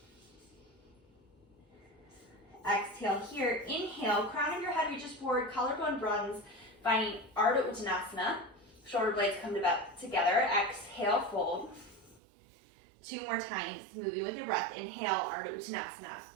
Exhale here, inhale, crown of your head reaches forward, collarbone broadens, finding Ardha Uttanasana. Shoulder blades come together, exhale, fold. 2 more times, moving with your breath. Inhale, Ardha Uttanasana.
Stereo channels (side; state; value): left; drops out; at 12.2 s